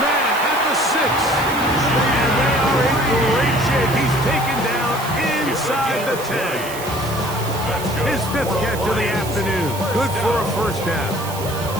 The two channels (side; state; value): right; noise; hiss, 12 dB below the sound